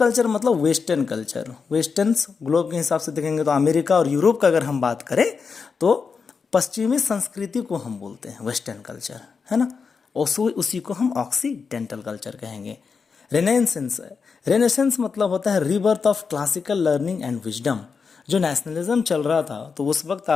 मतलब वेस्टर्न कल्चर। वेस्टर्न ग्लोब के हिसाब से देखेंगे तो अमेरिका और यूरोप का अगर हम बात करें तो पश्चिमी संस्कृति को हम बोलते हैं वेस्टर्न कल्चर, है ना। उसी को हम ऑक्सीडेंटल कल्चर कहेंगे। रेनेसेंस, रेनेसेंस मतलब होता है rebirth of classical learning and wisdom. जो नेशनलिज्म चल रहा था तो उस वक्त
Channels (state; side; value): quieter; right; 5.4 dB